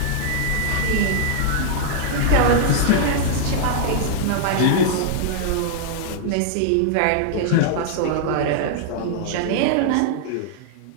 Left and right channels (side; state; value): both; different; correlation -0.01